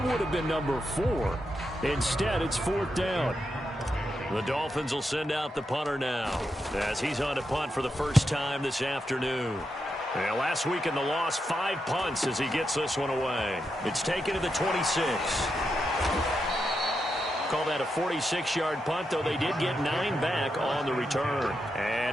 would have been number 4. Instead, it's 4th down. The Dolphins will send out the punter now as he's on to punt for the first time this afternoon. Yeah, last week in the loss, 5 punts as he gets this one away. It's taken to the 26. Call that a 46-yard punt, though they did get 9 back on the return.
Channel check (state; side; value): normal; both; correlation 0.85